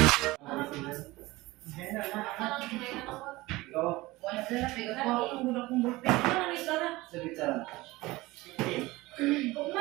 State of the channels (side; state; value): left; quieter; 20.1 dB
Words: Ikaw, Wala sila, bigat po ako ng gulang kong burping. Ano ang isa na? sa bitsaran.